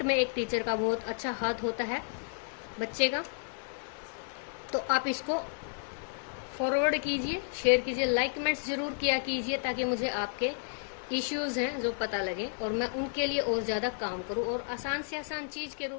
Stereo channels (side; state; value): right; silent; digital silence